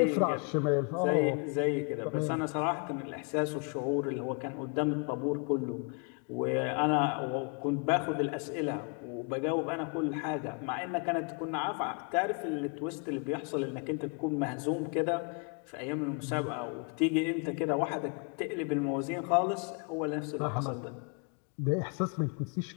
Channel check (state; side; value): quieter; right; 37.1 dB